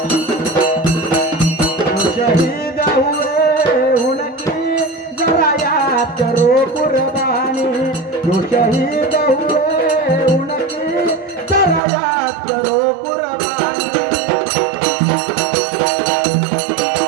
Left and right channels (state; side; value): drops out; left; at 11.8 s